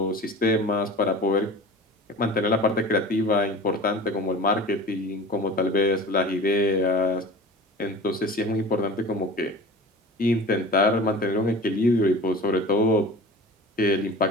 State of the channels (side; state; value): both; normal; correlation 0.38